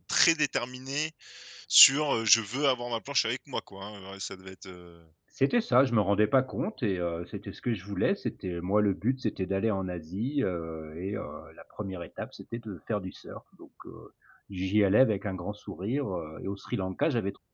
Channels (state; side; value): identical; both; correlation 1.00